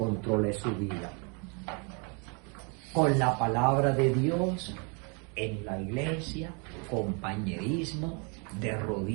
su vida. Con la palabra de Dios, en la iglesia, compañerismo, de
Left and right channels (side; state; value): left; quieter; 34.8 dB